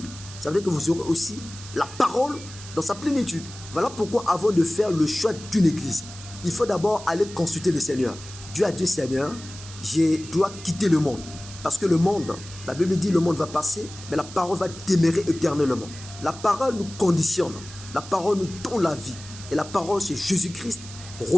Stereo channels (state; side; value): noise; right; hiss, 15 dB below the sound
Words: ça veut dire que vous aurez aussi la parole dans sa plénitude. Voilà pourquoi avant de faire le choix d'une église, il faut d'abord aller consulter le Seigneur. Dieu a dit, Seigneur, je dois quitter le monde. Parce que le monde, la Bible dit le monde va passer, mais la parole va demeurer éternellement. La parole nous conditionne, la parole nous donne la vie. Et la parole, c'est Jésus-Christ